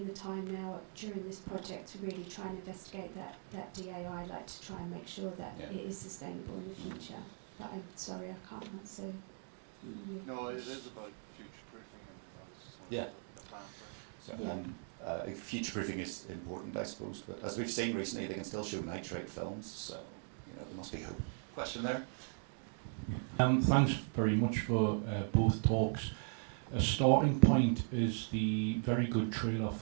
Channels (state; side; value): silent; left; 52 dB below the other